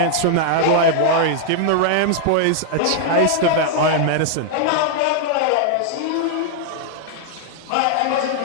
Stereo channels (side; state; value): both; different; correlation -0.01